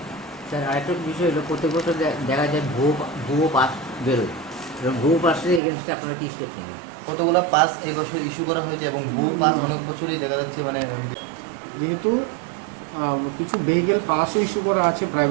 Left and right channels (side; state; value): left; drops out; at 5.6 s